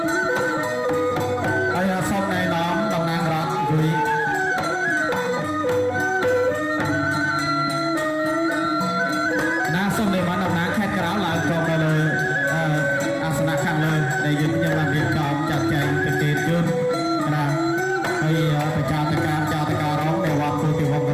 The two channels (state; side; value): identical; both; correlation 1.00